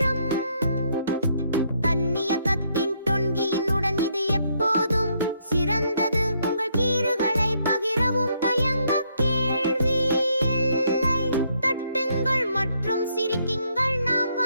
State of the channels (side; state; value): both; inverted; correlation -0.72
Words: தன்னியக்கத்தின் தொன்கியினுடன் இது எப்போதும் சிறந்தது. உங்கள் கீறுகளை பகிரவும் தயங்க கேள்வி இல்லை. தட்டுங்கள் மற்றும் சிரிக்குங்கள், நாம்